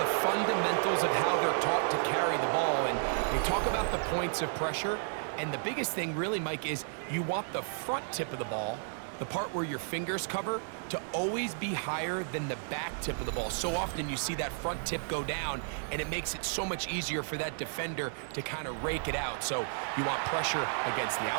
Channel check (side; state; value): left; silent; digital silence